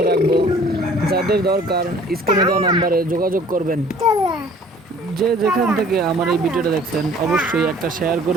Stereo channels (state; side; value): normal; both; correlation 0.53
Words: রাখবো। যাদের দরকার স্ক্রিনে দেওয়া নাম্বারে যোগাযোগ করবেন। যে যেখান থেকে আমার এই ভিডিওটা দেখছেন অবশ্যই একটা শেয়ার